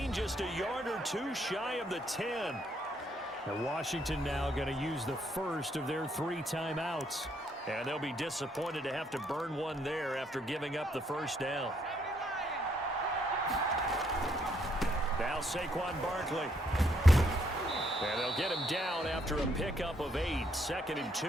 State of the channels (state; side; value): normal; both; correlation 0.72